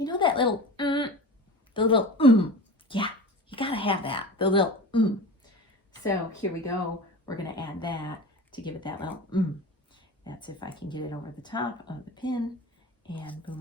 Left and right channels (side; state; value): both; normal; correlation 0.33